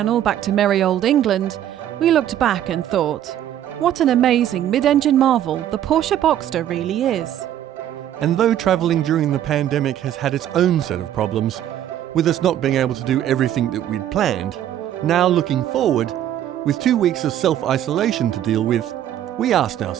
back to merry old England, we looked back and thought, what an amazing mid-engine marvel the Porsche Boxster really is. And though travelling during the pandemic has had its own set of problems, with us not being able to do everything that we'd planned, now looking forward, with 2 weeks of self-isolation to deal with, we asked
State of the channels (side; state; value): left; quieter; 11.3 dB